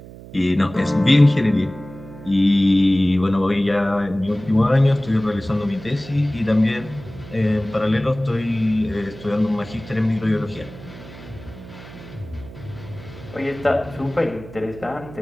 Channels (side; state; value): right; noise; hum, 17 dB below the sound